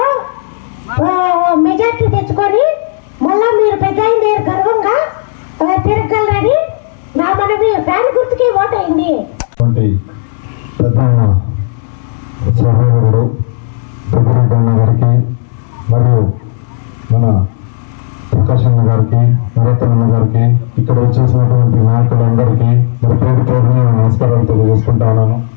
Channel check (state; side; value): silent; right; digital silence